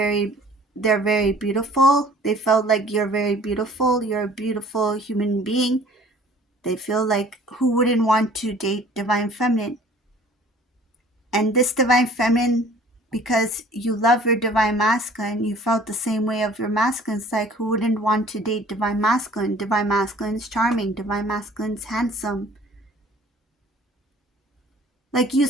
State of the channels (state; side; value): normal; both; correlation 0.51